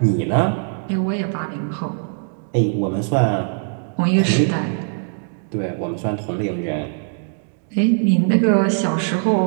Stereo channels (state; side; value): silent; left; 61 dB below the other